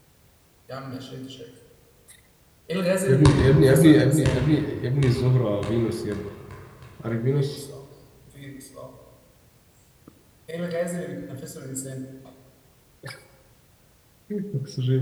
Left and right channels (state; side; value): identical; both; correlation 1.00